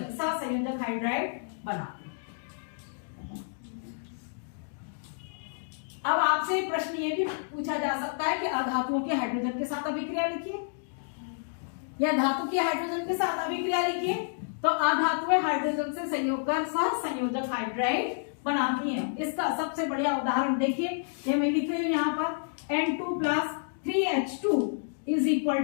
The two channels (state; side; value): silent; right; digital silence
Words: सहसंयोजक हाइड्राइड बनाते हैं। अब आपसे प्रश्न ये भी पूछा जा सकता है कि अधातुओं के हाइड्रोजन के साथ अभिक्रिया लिखिए या धातु की हाइड्रोजन के साथ अभिक्रिया लिखिए। तो अधातुएं हाइड्रोजन से संयोग कर सहसंयोजक हाइड्राइड बनाती हैं। इसका सबसे बढ़िया उदाहरण देखिए, ये मैं लिख रही हूं यहाँ पर N2 plus 3H2 is equal